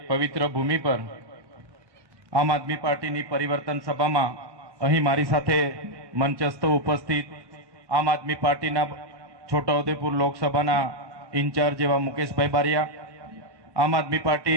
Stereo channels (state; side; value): late; left; 1.1 ms